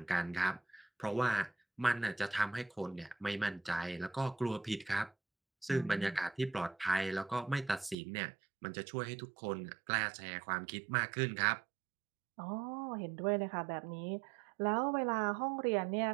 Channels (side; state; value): left; drops out; at 8.0 s